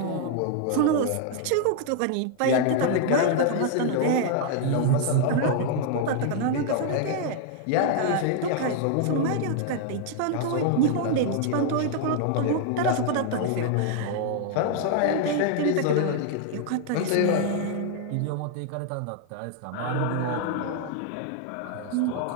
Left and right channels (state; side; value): different; both; correlation 0.00